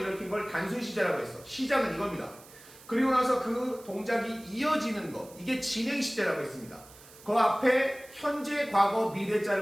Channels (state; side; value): noise; right; hiss, 21 dB below the sound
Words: 걸 단순 시제라고 했어. 시작은 이겁니다. 그리고 나서 그 동작이 이어지는 것. 이게 진행 시제라고 했습니다. 그 앞에 현재, 과거,